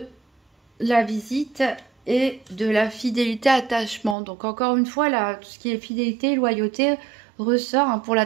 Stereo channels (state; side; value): drops out; left; at 4.2 s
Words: la visite et de la fidélité, attachement. Donc encore une fois, là, tout ce qui est fidélité, loyauté ressort, hein, pour